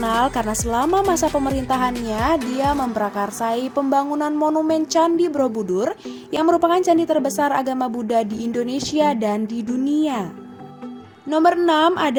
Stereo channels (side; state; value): both; identical; correlation 1.00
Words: karena selama masa pemerintahannya dia memprakarsai pembangunan monumen Candi Borobudur yang merupakan candi terbesar agama Buddha di Indonesia dan di dunia. Nomor 6